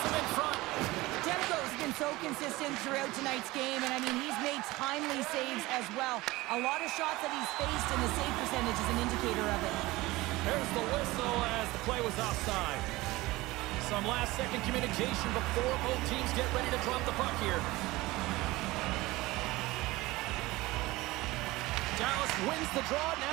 him in front. Demko's been so consistent throughout tonight's game, and I mean, he's made timely saves as well. A lot of shots that he's faced, and the save percentage is an indicator of it. There's the whistle as the play was offside. Some last-second communication before both teams get ready to drop the puck here. Dallas wins the draw.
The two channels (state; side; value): quieter; left; 19.9 dB